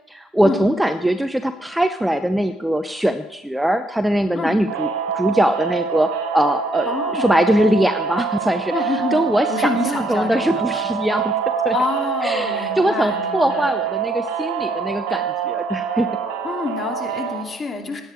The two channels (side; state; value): both; normal; correlation 0.73